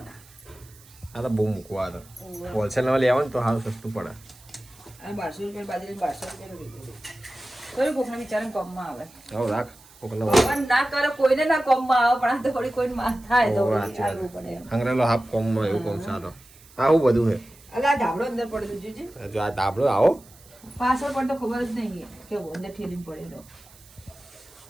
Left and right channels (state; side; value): noise; right; hiss, 24 dB below the sound